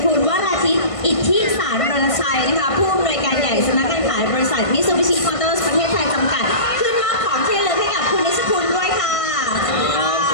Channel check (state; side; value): late; right; 1.5 ms